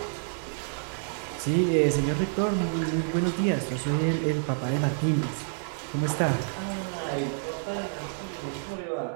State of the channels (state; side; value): silent; left; 58 dB below the other